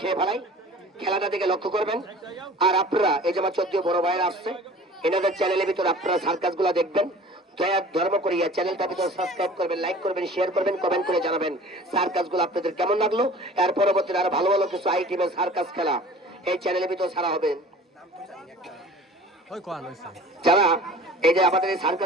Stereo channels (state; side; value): normal; both; correlation 0.44